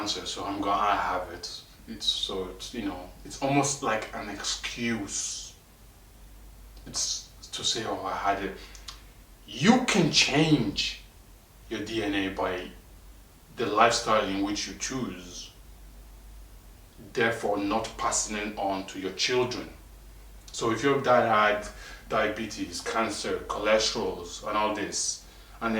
so I have it. It's almost like an excuse. It's to say, oh, I had it. You can change your DNA by the lifestyle in which you choose, therefore not passing it on to your children. So if your dad had diabetes, cancer, cholesterol, and all this, and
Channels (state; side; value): identical; both; correlation 1.00